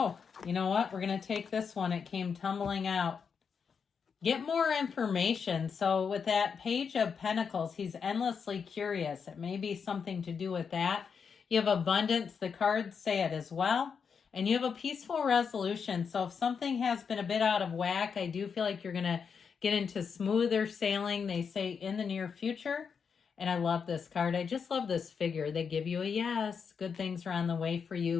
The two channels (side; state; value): right; quieter; 6.2 dB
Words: you know what? We're going to take this one. It came tumbling out. Get more information. So with that Page of Pentacles, he's endlessly curious. It may be something to do with that. You have abundance. The cards say it as well. And you have a peaceful resolution. So if something has been a bit out of whack, I do feel like you're going to get into smoother sailing. They say in the near future. And I love this card. I just love this figure. They give you a yes. Good things are on the way for